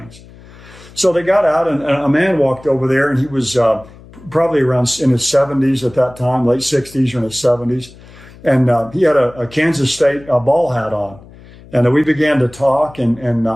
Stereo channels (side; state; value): left; noise; hum, 22 dB below the sound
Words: So they got out, and a man walked over there, and he was probably around in his 70s at that time, late 60s or in his 70s. And he had a Kansas State ball hat on. And we began to talk, and